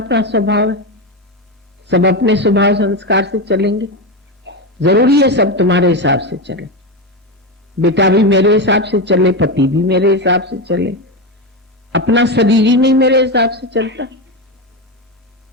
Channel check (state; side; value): normal; both; correlation 0.14